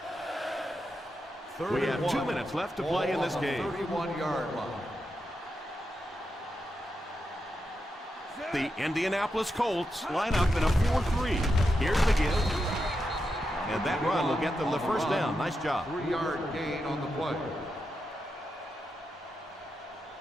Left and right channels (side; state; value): both; normal; correlation 0.87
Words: We have 2 minutes left to play in this game. 31-yard line. The Indianapolis Colts line up in a 4-3. Here's the give. And that run will get them the first down. Nice job. 3-yard gain on the play.